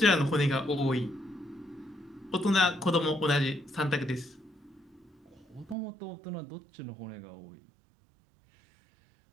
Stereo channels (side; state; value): left; drops out; at 5.8 s